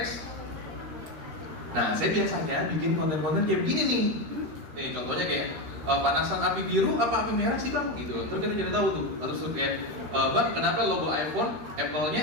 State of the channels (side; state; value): left; late; 13 ms